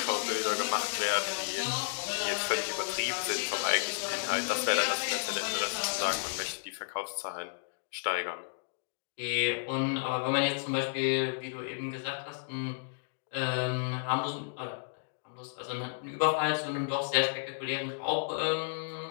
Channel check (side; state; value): right; silent; digital silence